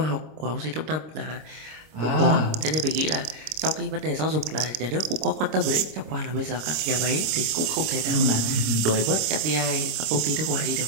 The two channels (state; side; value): late; left; 26 ms